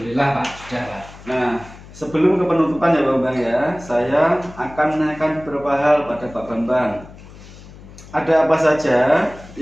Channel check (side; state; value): left; noise; hum, 19 dB below the sound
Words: Pak, sudah Pak. Nah, sebelum ke penutupan ya Pak Bambang ya, saya akan menanyakan beberapa hal pada Pak Bambang. Ada apa saja